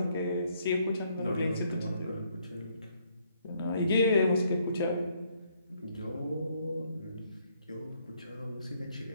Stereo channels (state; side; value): inverted; both; correlation -0.69